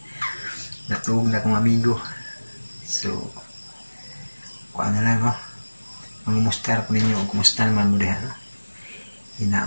Natulog na akong amigo. So, kuha na lang oh. Mangumustar ko ninyo o kumusta naman mo diha no.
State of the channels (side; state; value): both; inverted; correlation -1.00